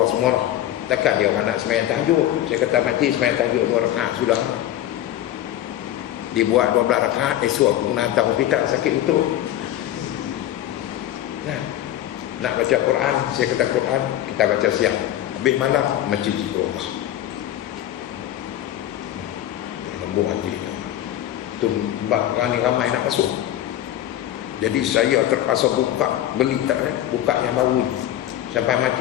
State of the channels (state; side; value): quieter; right; 12.6 dB